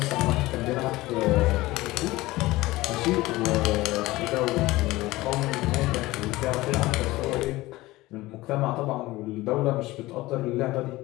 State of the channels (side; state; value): right; quieter; 18.9 dB